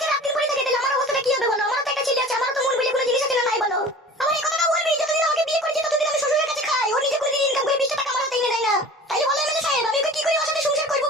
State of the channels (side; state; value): both; normal; correlation 0.41